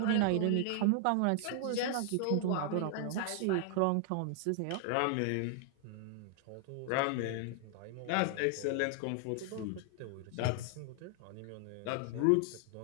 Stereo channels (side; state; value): both; different; correlation 0.00